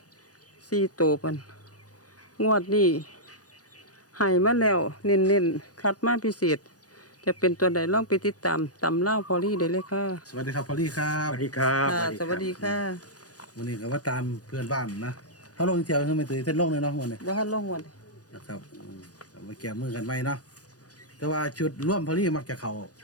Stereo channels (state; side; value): late; right; 0.68 ms